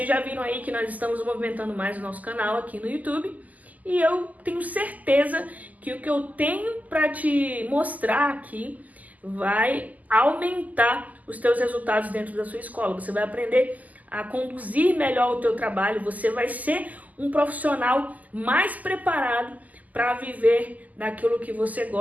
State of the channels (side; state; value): left; late; 0.079 ms